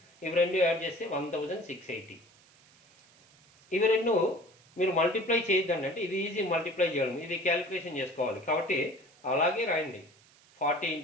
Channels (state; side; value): noise; right; hiss, 28 dB below the sound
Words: ఇవి 2 యాడ్ చేస్తే 1680. ఇవి 2 మీరు మల్టిప్లై చేయొద్దండి. అంటే ఇది ఈజీ మల్టిప్లై చేయడం, ఇది క్యాలిక్యులేషన్ చేసుకోవాలి. కాబట్టి అలాగే రాయండి. 40